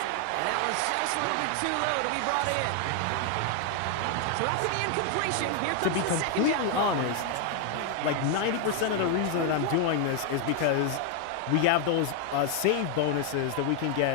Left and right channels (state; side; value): different; both; correlation 0.00